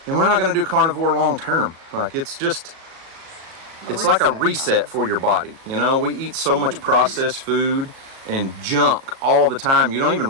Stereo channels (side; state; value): left; late; 37 ms